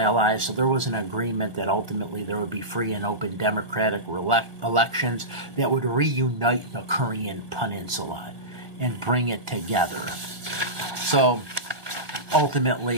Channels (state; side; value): late; left; 1.6 ms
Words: so there was an agreement that ultimately there would be free and open democratic elections that would reunite the Korean Peninsula and bring it together. So